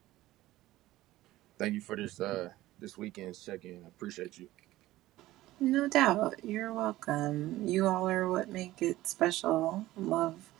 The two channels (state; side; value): quieter; left; 16.4 dB